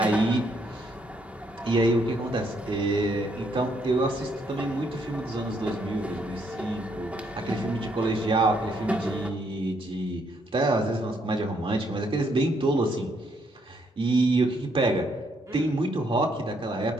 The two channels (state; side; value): normal; both; correlation 0.72